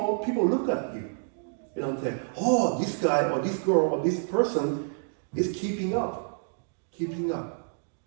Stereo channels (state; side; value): silent; left; digital silence